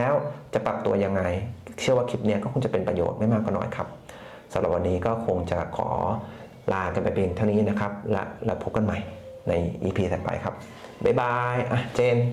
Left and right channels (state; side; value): identical; both; correlation 1.00